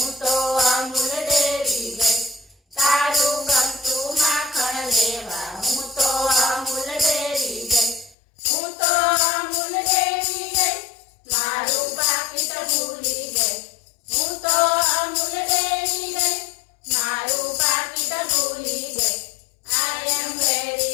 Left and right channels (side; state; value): right; drops out; at 8.2 s